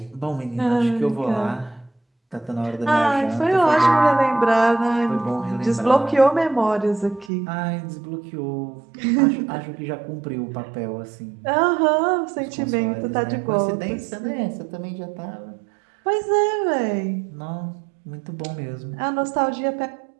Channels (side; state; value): left; drops out; at 7.3 s